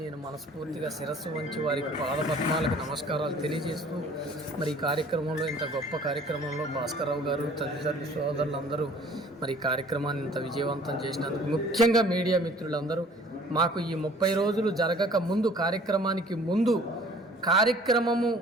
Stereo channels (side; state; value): both; normal; correlation 0.52